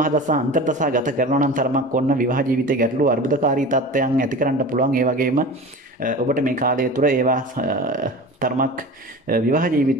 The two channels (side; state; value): both; normal; correlation 0.35